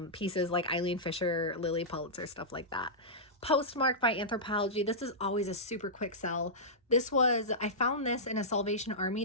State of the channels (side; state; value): both; normal; correlation -0.14